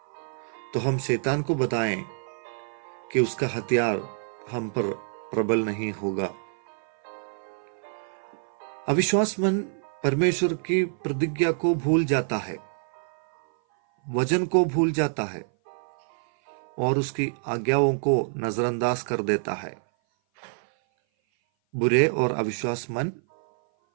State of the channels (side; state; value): left; silent; 57 dB below the other